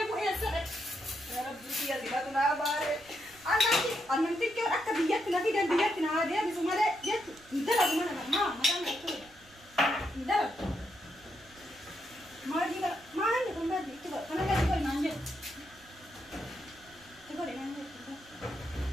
يا سلام يا رب يا زكاتنا بارك أنا تكير أكتر بيجتنا في ده بيجتنا هذا بس ما ده جت ندلع ما دام يكتب ندلع ما دي ما عندي كم بدي كتب أنا بدي كل ما عندي تقول إن عندي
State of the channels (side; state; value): right; noise; rumble, 26 dB below the sound